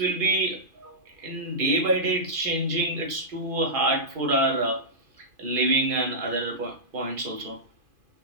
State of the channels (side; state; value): left; late; 2.5 ms